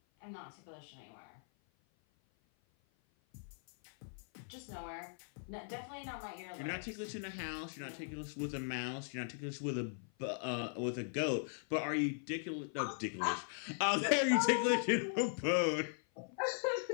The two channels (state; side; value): silent; right; 52 dB below the other